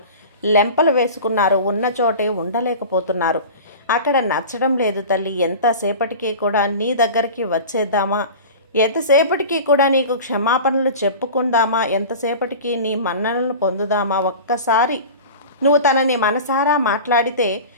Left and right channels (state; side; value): inverted; both; correlation -0.35